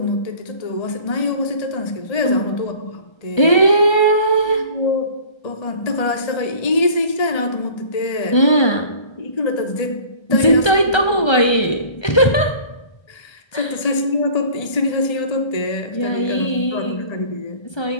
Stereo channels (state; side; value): late; right; 1.3 ms